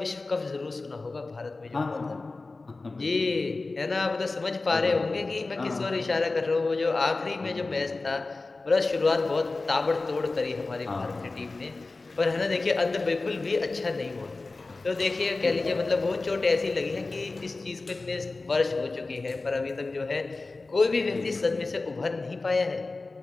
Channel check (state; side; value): quieter; right; 3.5 dB